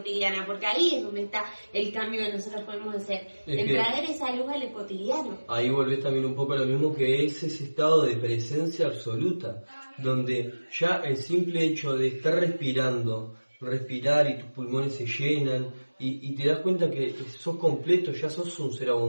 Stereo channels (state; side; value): inverted; both; correlation -1.00